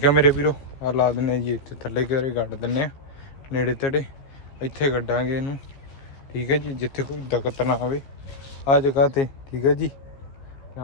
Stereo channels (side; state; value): right; late; 15 ms